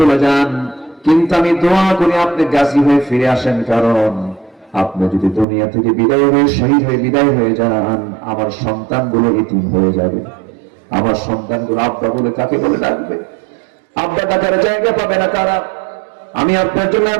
যান, কিন্তু আমি দোয়া করি আপনি গাজী হয়ে ফিরে আসেন, কারণ আপনি যদি দুনিয়া থেকে বিদায় হয়ে শহীদ হয়ে বিদায় হয়ে যান, আমার সন্তানগুলো এতিম হয়ে যাবে। আমার সন্তানগুলো আব্বা বলে কাকে বলে ডাকবে? আব্বা ডাকার জায়গা পাবে না কারা? আমি আপনার জন্য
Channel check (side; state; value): left; drops out; at 5.5 s